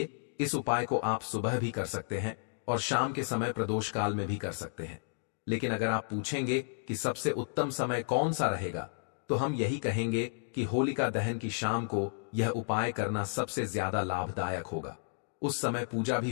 इस उपाय को आप सुबह भी कर सकते हैं और शाम के समय प्रदोष काल में भी कर सकते हैं। लेकिन अगर आप पूछेंगे कि सबसे उत्तम समय कौन सा रहेगा, तो हम यही कहेंगे कि होलिका दहन की शाम को यह उपाय करना सबसे ज्यादा लाभदायक होगा। उस समय पूजा भी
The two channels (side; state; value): right; silent; digital silence